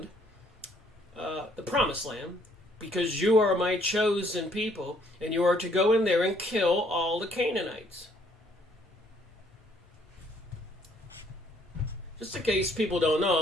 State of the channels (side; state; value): both; normal; correlation 0.65